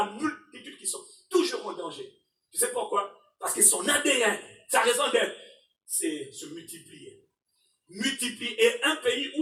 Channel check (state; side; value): identical; both; correlation 1.00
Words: multitude qui sont toujours en danger. que son ADN, sa raison d'être, c'est se multiplier. Multiplier. Et un pays